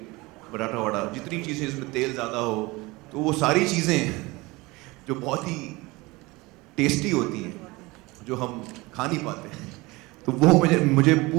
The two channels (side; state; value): left; quieter; 22.7 dB